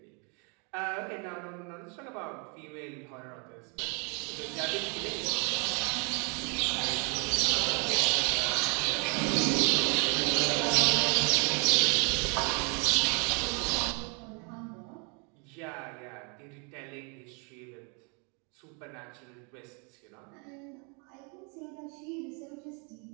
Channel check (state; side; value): quieter; left; 35.1 dB